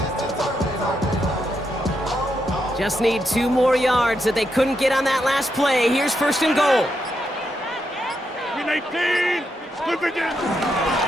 Just need 2 more yards that they couldn't get on that last play. Here's 1st and goal. Win 18. Split again.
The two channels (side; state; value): both; normal; correlation 0.82